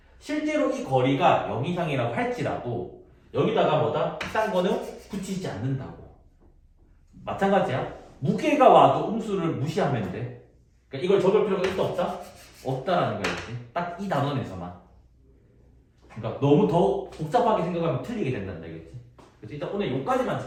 실제로 이 거리가 0 이상이라고 할지라도 여기다가 뭐다? 딴 거는 붙이지 않는다고. 마찬가지야. 무게가 와도 음수를 무시하면 돼. 그러니까 이걸 적을 필요가 있다 없다? 없다라는 거였지. 딱 이 단원에서만. 그러니까 너무 더 복잡하게 생각하면 틀리게 된다는 얘기겠지. 그래서 일단 오늘 여기까지만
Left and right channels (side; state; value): both; identical; correlation 1.00